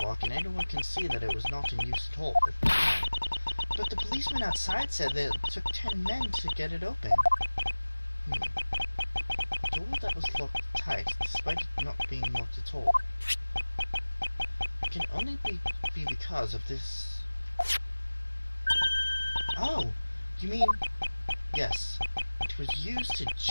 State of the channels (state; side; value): inverted; both; correlation -1.00